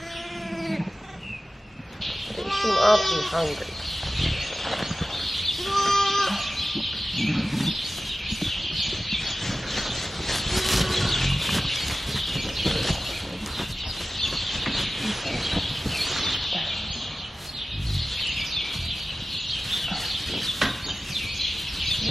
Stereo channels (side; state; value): both; normal; correlation 0.95